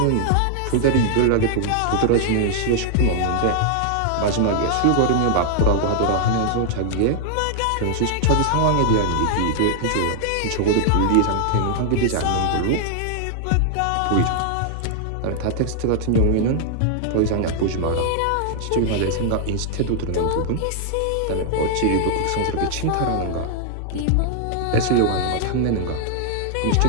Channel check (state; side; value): different; both; correlation 0.00